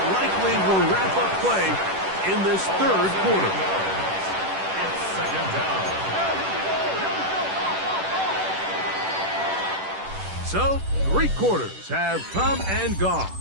likely will wrap up play in this 3rd quarter. It's 2nd down. So, 3 quarters have come and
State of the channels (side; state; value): left; late; 10 ms